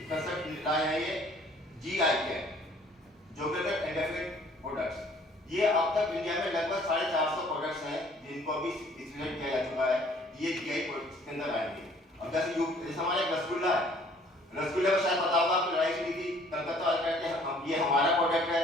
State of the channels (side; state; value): both; normal; correlation 0.57